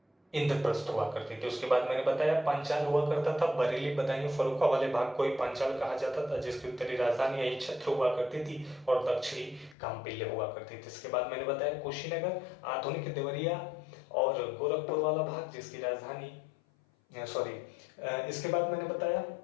इंद्रप्रस्थ हुआ करती थी। उसके बाद मैंने बताया पांचाल हुआ करता था, बरेली बदायूं फर्रुखा वाले भाग को ही पांचाल कहा जाता था, जिसकी उत्तरी राजधानी यही छत्र हुआ करती थी, और दक्षिणी काम्पिल्य हुआ करती थी। इसके बाद मैंने बताया कुशीनगर, आधुनिक देवरिया और गोरखपुर वाला भाग, जिसकी राजधानी इसके बाद मैंने बताया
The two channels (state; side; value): drops out; right; at 9.8 s